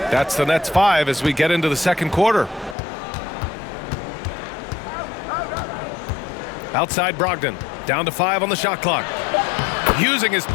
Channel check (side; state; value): right; drops out; at 2.8 s